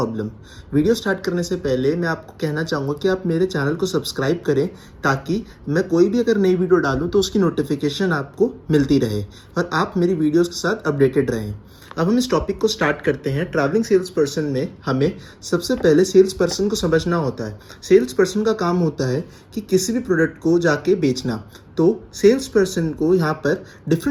Video start करने से पहले मैं आपको कहना चाहूँगा कि आप मेरे चैनल को सब्सक्राइब करें ताकि मैं कोई भी अगर नई वीडियो डालूँ तो उसकी नोटिफिकेशन आपको मिलती रहे और आप मेरी वीडियोज़ के साथ अपडेटेड रहें। अब हम इस टॉपिक को स्टार्ट करते हैं। ट्रैवलिंग सेल्स पर्सन में हमें सबसे पहले सेल्स पर्सन को समझना होता है। सेल्स पर्सन का काम होता है कि किसी भी प्रोडक्ट को जाके बेचना। तो सेल्स पर्सन को यहाँ पर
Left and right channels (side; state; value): both; identical; correlation 1.00